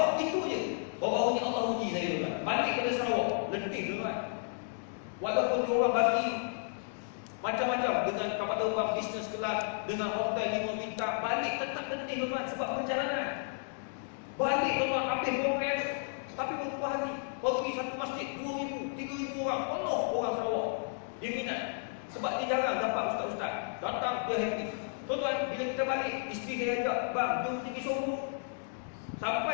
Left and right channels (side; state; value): right; silent; digital silence